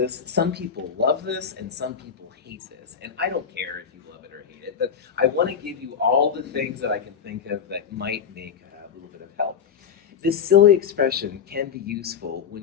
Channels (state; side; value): quieter; right; 7.3 dB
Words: Some people love this and some people hate this, and I don't care if you love it or hate it, but I want to give you all the things that I can think of that might make a little bit of help. This silly expression can be useful